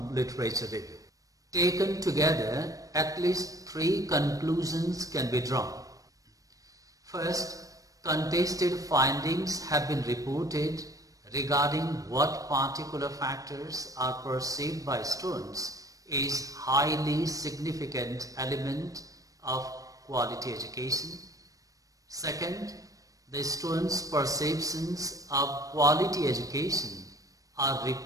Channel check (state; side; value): late; left; 0.16 ms